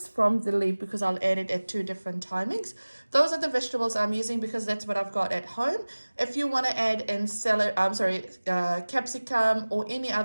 from the leaf because I'll add it at two different timings. Those are the vegetables I'm using because that's what I've got at home. If you want to add in capsicum or any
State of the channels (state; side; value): inverted; both; correlation -1.00